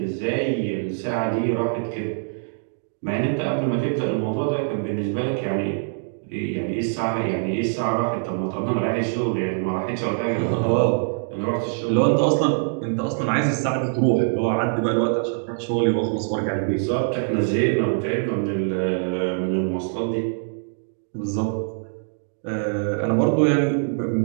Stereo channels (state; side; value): silent; left; digital silence